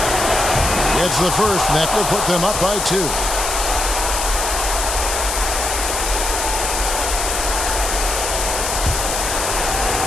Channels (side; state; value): left; noise; hiss, 2 dB below the sound